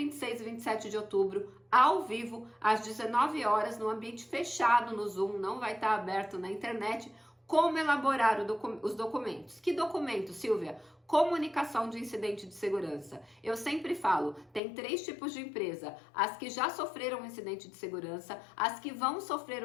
e 27 de outubro, ao vivo, às 19 horas, no ambiente fechado no Zoom, não vai estar aberto na internet, como elaborar os documentos. Que documentos, Silvia? Comunicação de incidente de segurança. Eu sempre falo, tem 3 tipos de empresa: as que já sofreram um incidente de segurança, as que vão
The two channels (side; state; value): right; drops out; at 14.6 s